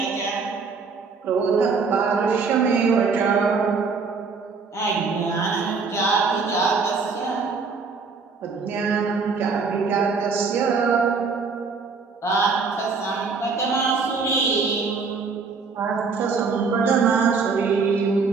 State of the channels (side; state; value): left; quieter; 4.8 dB